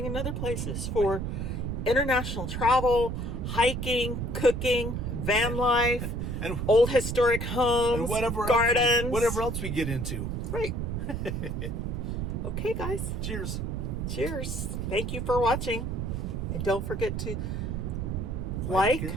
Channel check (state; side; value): noise; right; rumble, 2 dB below the sound